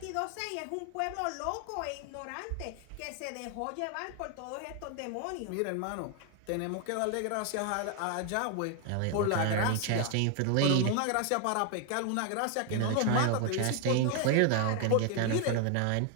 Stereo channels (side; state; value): both; different; correlation 0.00